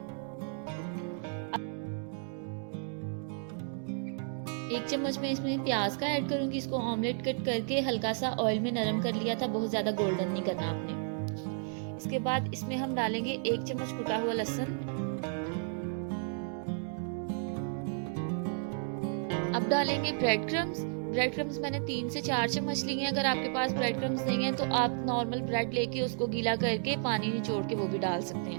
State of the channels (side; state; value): left; silent; 56 dB below the other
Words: 1 चम्मच में इसमें प्याज का ऐड करूंगी, इसको ऑमलेट कट करके हल्का सा ऑयल में नरम कर लिया था, बहुत ज्यादा गोल्डन नहीं करना आपने। इसके बाद इसमें हम डालेंगे 1 चम्मच कुटा हुआ लहसुन। अब डालेंगे ब्रेड क्रम्स। ब्रेड क्रम्स मैंने 3 से 4 चम्मच लिए हैं। अगर आपके पास ब्रेड क्रम्स नहीं है तो आप नॉर्मल ब्रेड लेके उसको गीला करके पानी निचोड़ के वो भी डाल सकते